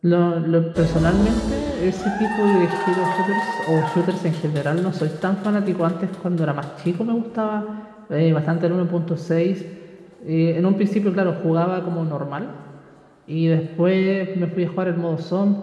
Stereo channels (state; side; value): identical; both; correlation 1.00